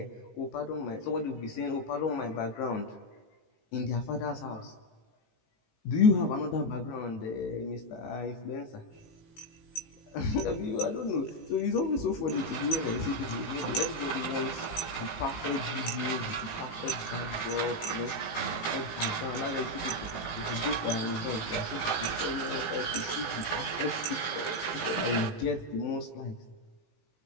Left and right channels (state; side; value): late; right; 17 ms